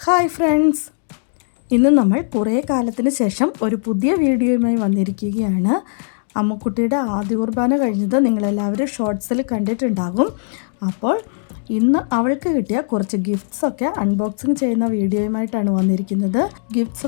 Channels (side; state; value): right; silent; digital silence